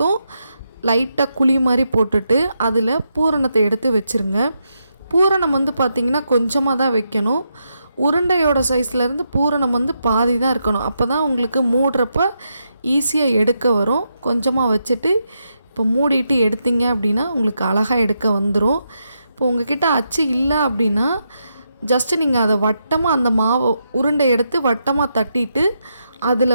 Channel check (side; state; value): both; inverted; correlation -0.83